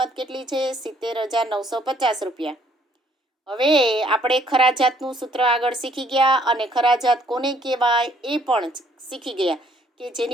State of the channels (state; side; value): normal; both; correlation 0.64